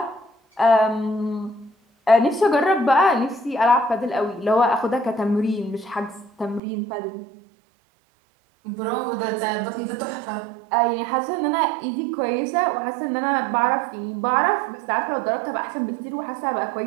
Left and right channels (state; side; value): drops out; left; at 6.6 s